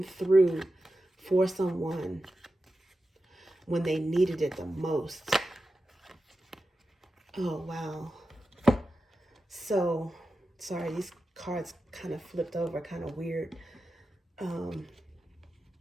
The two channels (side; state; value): both; normal; correlation 0.92